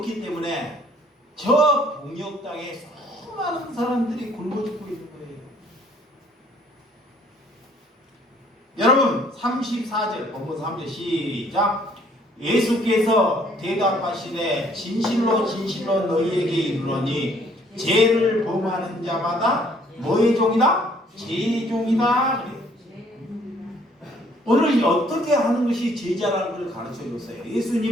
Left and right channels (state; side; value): normal; both; correlation 0.61